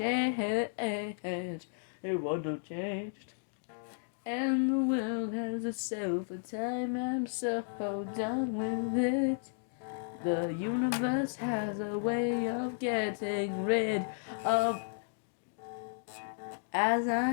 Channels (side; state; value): right; silent; digital silence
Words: It wouldn't have changed. And the world has itself a time. I'm so done with it. The universe has a way of getting rid of. As I